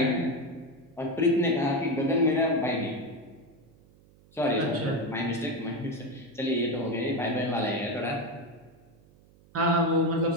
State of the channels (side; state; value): right; noise; hum, 28 dB below the sound